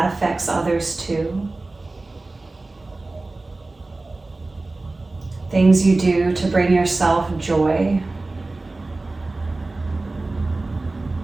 affects others too. Things you do to bring yourself joy.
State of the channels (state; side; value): quieter; left; 3.2 dB